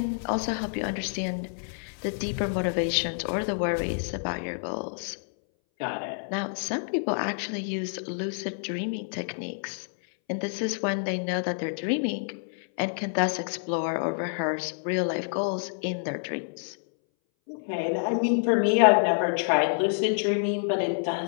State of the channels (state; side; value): silent; right; 59 dB below the other